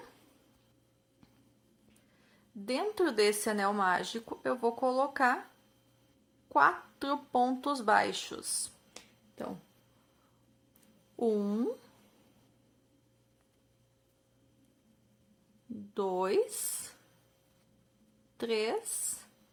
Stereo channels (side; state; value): both; identical; correlation 1.00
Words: Dentro desse anel mágico, eu vou colocar 4 pontos baixos. Então, 1, 2, 3